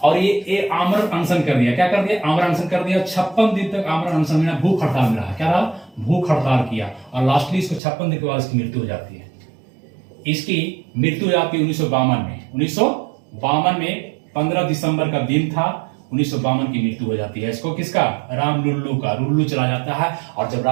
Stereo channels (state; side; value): drops out; left; at 7.8 s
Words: और ये आमरण अनशन कर दिया। क्या कर दिया, आमरण अनशन कर दिया। 56 दिन तक आमरण अनशन में भूख हड़ताल में रहा। क्या रहा, भूख हड़ताल किया और लास्टली इसको 56 दिन के बाद इसकी मृत्यु हो जाती है। इसकी मृत्यु हो जाती है 1952 में 15 दिसंबर का दिन था, 1952 की मृत्यु हो जाती है। इसको किसका, राम लुल्लू का, लुल्लू चला जाता है। और जब